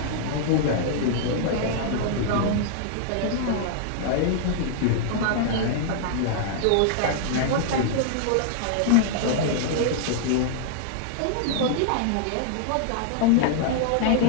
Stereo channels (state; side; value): different; both; correlation -0.01